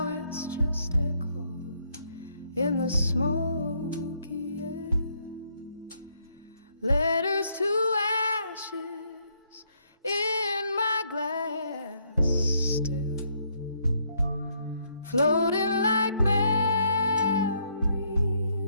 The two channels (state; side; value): inverted; both; correlation -0.72